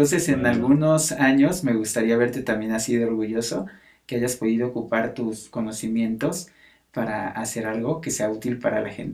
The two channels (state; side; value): identical; both; correlation 1.00